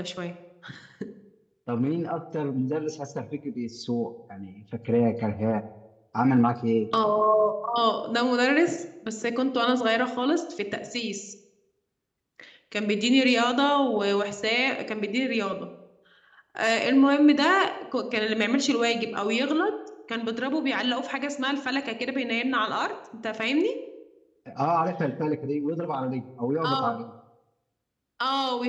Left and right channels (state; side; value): identical; both; correlation 1.00